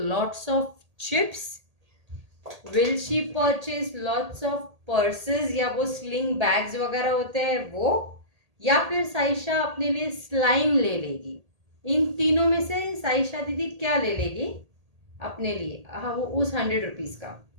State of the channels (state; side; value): late; left; 1.8 ms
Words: of chips, will she purchase lots of purses या वो स्लिंग बैग्स वगैरह होते हैं वो, या फिर साइशा अपने लिए स्लाइम ले लेगी. इन तीनों में से साइशा दीदी क्या ले लेगी अपने लिए, हाँ, वो उस 100 रुपीज़ का.